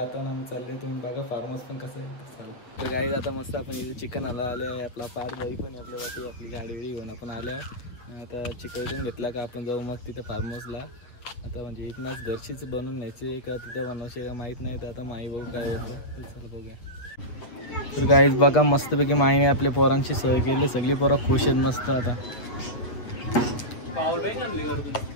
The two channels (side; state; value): right; late; 8.3 ms